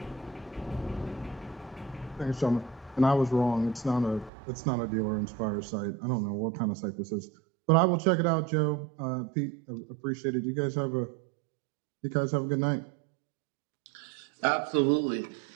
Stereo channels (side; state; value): left; drops out; at 4.3 s